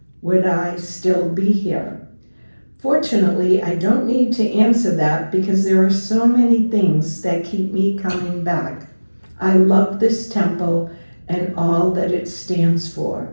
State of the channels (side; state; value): both; inverted; correlation -1.00